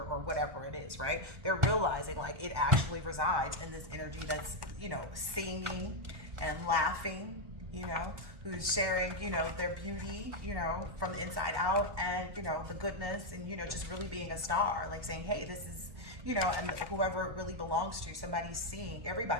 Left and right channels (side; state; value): left; late; 1.1 ms